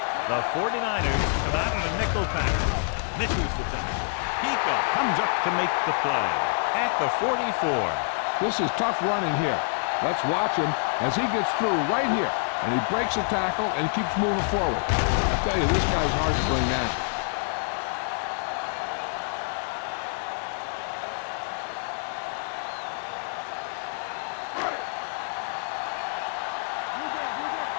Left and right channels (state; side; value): silent; right; digital silence